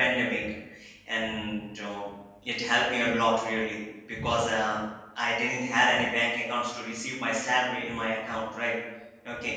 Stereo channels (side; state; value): both; identical; correlation 1.00